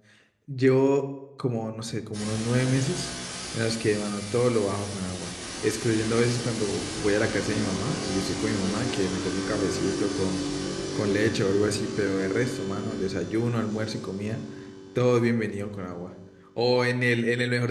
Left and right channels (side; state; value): both; identical; correlation 1.00